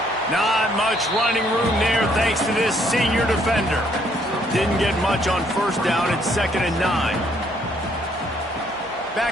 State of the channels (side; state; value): both; normal; correlation 0.67